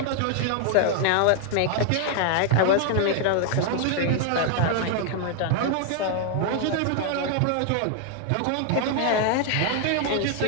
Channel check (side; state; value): both; different; correlation 0.00